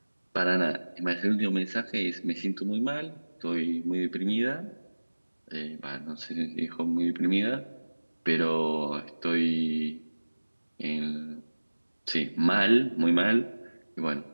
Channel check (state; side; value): inverted; both; correlation -1.00